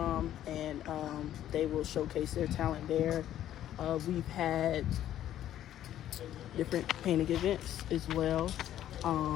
and they will showcase their talent there. We've had different painting events as well.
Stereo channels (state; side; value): quieter; right; 11.9 dB